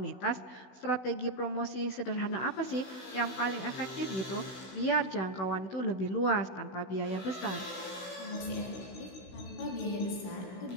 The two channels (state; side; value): late; right; 16 ms